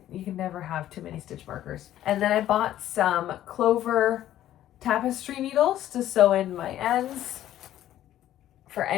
never have too many stitch markers. And then I bought some Clover tapestry needles to sew in my ends for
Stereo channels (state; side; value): quieter; right; 12.6 dB